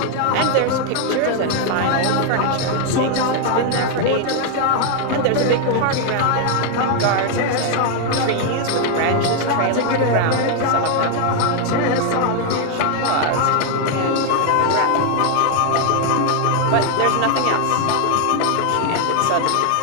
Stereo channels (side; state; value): both; different; correlation 0.00